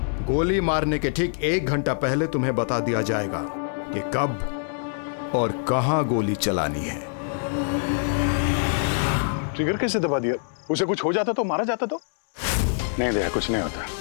गोली मारने के ठीक 1 घंटा पहले तुम्हें बता दिया जाएगा कि कब और कहां गोली चलानी है। ट्रिगर कैसे दबा दिया? उसे कुछ हो जाता तो, मारा जाता तो? नहीं दया, कुछ नहीं होता।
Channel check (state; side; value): silent; right; 62 dB below the other